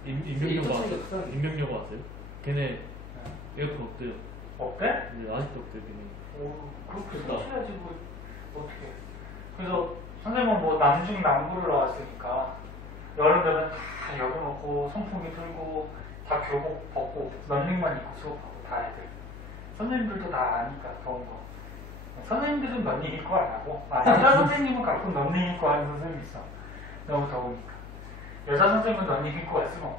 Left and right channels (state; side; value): noise; left; hum, 13 dB below the sound